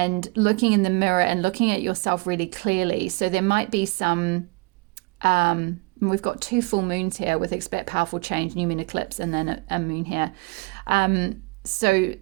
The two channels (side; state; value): left; quieter; 26.6 dB